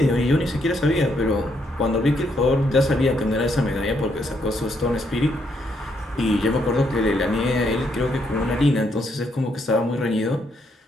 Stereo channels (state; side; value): normal; both; correlation 0.75